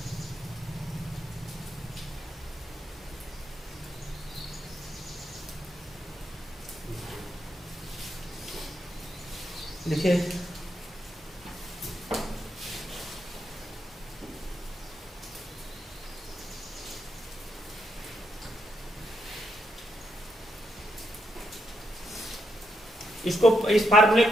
देखिए इस फार्मूले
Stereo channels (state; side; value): normal; both; correlation 0.81